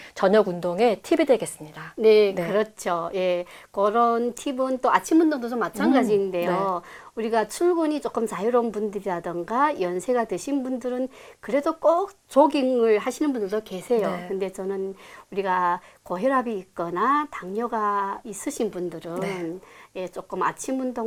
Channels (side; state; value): both; identical; correlation 1.00